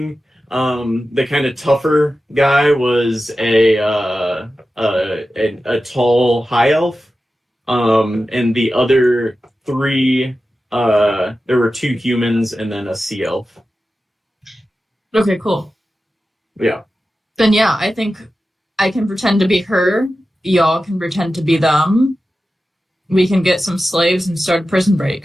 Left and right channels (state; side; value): normal; both; correlation 0.93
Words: The kind of tougher guy was a tall high elf. And the other 3, there were 2 humans and then a sea elf. Okay, cool. Yeah. Then yeah, I think I can pretend to be her. Y'all can pretend to be them. We can get some slaves and start a prison